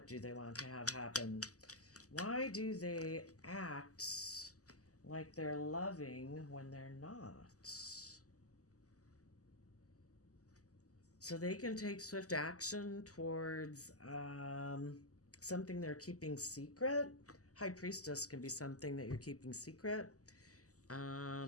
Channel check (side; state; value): right; late; 0.66 ms